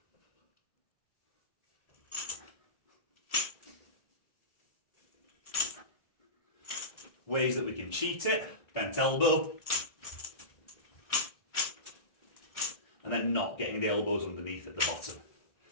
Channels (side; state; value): right; late; 1.7 ms